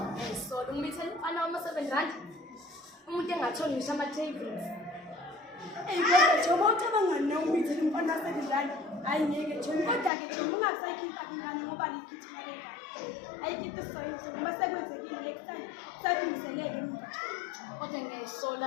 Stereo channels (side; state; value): right; drops out; at 10.1 s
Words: umithela umfana wama-7 umuntu engatholi ngisho ama-tables kodwa njengoba ucabangani nawumithela umfana wasedlala hayi ngeke njengoba kodwa-ke njengoba ungasayikhipha ingane ngoba likhithina lengane ayikhiphe isoyise ngoba sekwenzekile next time sakulungiseleke emuva kodwa